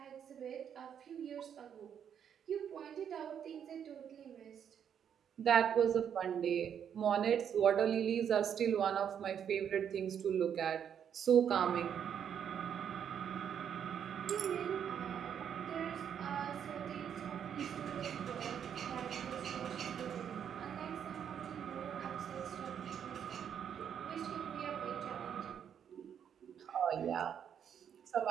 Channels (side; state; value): left; quieter; 8.5 dB